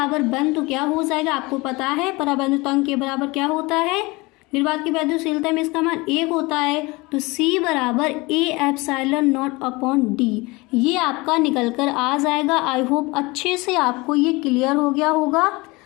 1 तो क्या हो जाएगा, आपको पता है पराबैद्युत अंक के बराबर क्या होता है, निर्वात की वैद्युशीलता में इसका मान 1 होता है। तो C बराबर A epsilon not upon D, ये आपका निकल कर आ जाएगा। आई होप अच्छे से आपको ये क्लियर हो गया होगा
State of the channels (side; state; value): right; quieter; 23.8 dB